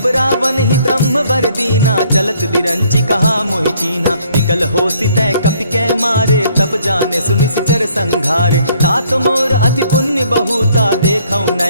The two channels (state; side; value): inverted; both; correlation -0.64